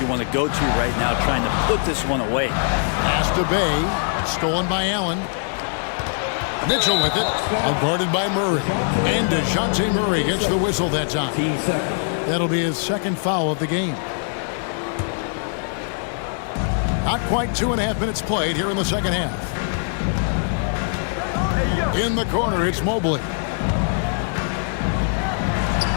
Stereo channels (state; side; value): silent; right; digital silence